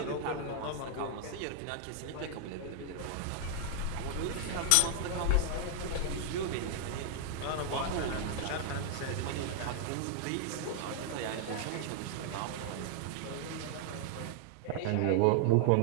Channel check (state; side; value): different; both; correlation 0.00